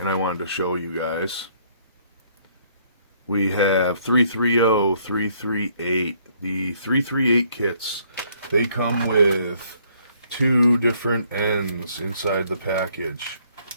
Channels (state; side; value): inverted; both; correlation -0.65